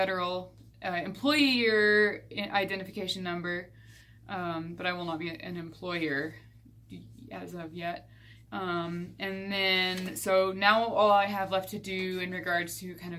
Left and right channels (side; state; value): both; identical; correlation 1.00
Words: employee year identification number, but I will not be an employer as of yet. And then, so now all I have left to do in regards to kind